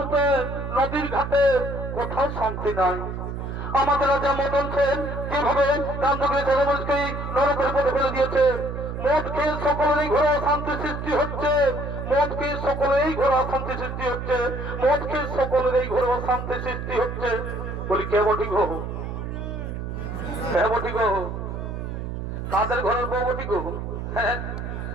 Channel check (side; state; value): right; noise; hum, 6 dB below the sound